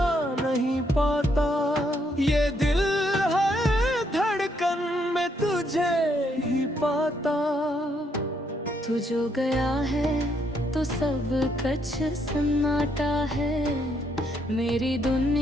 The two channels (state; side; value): normal; both; correlation 0.73